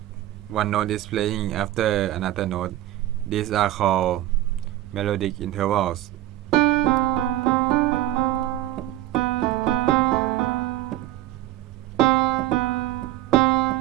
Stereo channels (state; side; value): quieter; left; 14.8 dB